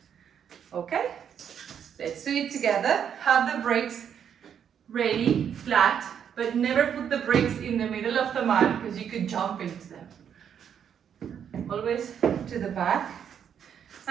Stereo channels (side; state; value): left; quieter; 8.3 dB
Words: Okay? Let's do it together. Have the brakes ready, flat, but never put the brakes in the middle of the mat because you could jump into them. Always to the back.